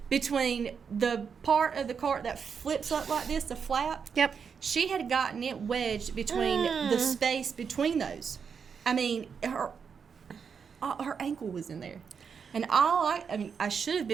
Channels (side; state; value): left; quieter; 6.4 dB